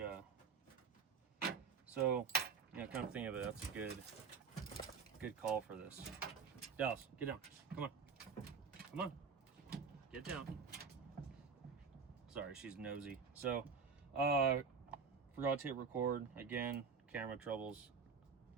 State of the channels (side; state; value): left; quieter; 5.7 dB